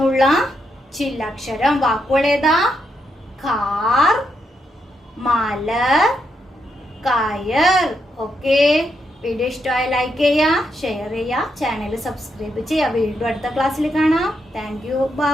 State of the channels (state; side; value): normal; both; correlation 0.81